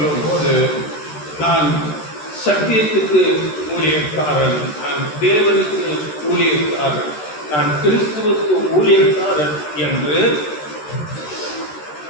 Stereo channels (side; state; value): right; late; 13 ms